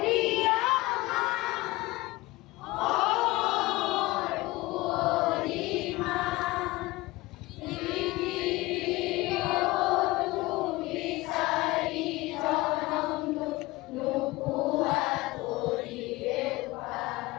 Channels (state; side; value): quieter; right; 20.4 dB